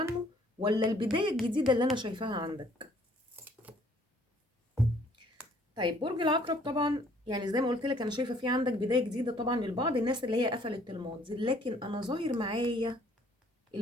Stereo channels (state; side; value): normal; both; correlation 0.60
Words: ولا البدايه الجديده اللي انا شايفاها عندك؟ طيب برج العقرب، طبعا يعني زي ما قلت لك انا شايفه في عندك بدايه جديده طبعا للبعض الناس اللي هي قفلت الماضي، لكن انا ظاهر معايا